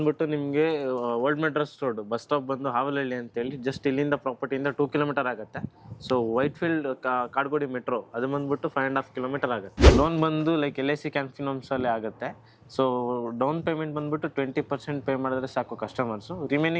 ನಿಮಗೆ old Madras road bus stop ಬಂದು ಹಾವಲಹಳ್ಳಿ ಅಂತ ಹೇಳಿ ಜಸ್ಟ್ ಇಲ್ಲಿಂದ ಪ್ರಾಪರ್ಟಿಯಿಂದ 2 kilometer ಆಗುತ್ತೆ. So white field Kadugodi metro ಅದು ಬಂದ್ಬಿಟ್ಟು 5.5 kilometer ಆಗುತ್ತೆ. ಲೋನ್ ಬಂದು ಲೈಕ್ LIC ಕ್ಯಾನ್ಫಿನಮ್ಸ್ ಅಲ್ಲಿ ಆಗುತ್ತೆ. ಸೊ ಡೌನ್ ಪೇಮೆಂಟ್ ಬಂದ್ಬಿಟ್ಟು 20% ಪೇ ಮಾಡಿದ್ರೆ ಸಾಕು ಕಸ್ಟಮರ್ಸು.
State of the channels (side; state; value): both; identical; correlation 1.00